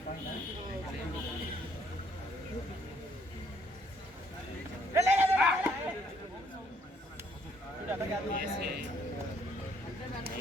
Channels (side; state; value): both; normal; correlation 0.67